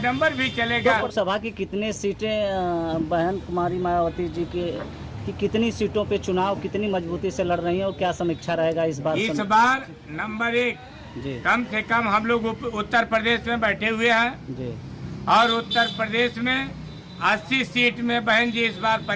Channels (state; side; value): identical; both; correlation 1.00